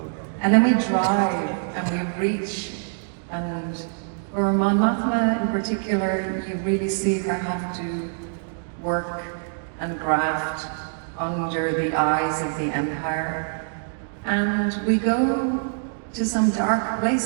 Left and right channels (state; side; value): silent; left; digital silence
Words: And then we drive and we reach, and for Mon Mothma in particular, you really see her have to work and graft under the eyes of the Empire. And we go to some dark